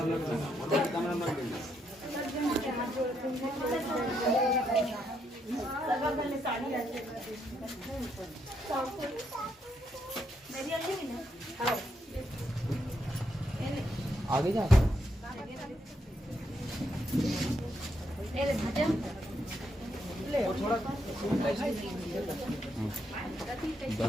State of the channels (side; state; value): both; normal; correlation 0.78